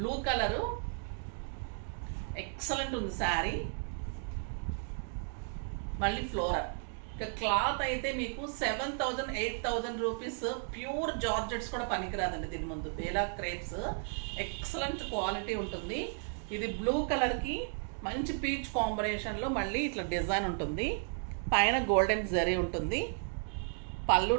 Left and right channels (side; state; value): left; silent; 55 dB below the other